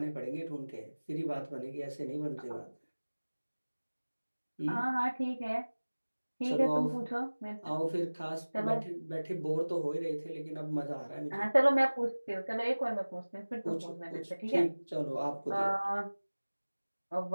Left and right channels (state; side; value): inverted; both; correlation -1.00